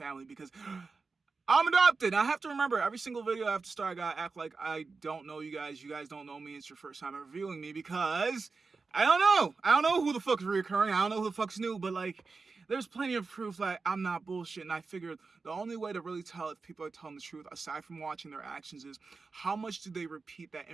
because I'm adopted. I have to remember, every single video I have to start, I gotta act like I don't know you guys. You guys don't know me. It's your first time ever viewing me, because I don't know. I don't know who the fuck is reoccurring. I don't know who the fuck's new, but like, there's plenty of proof that I'm not bullshit. And I figured the only way to really tell if people are telling the truth, aside from watching their actions, is how much do they repeat that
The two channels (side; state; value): left; quieter; 4.3 dB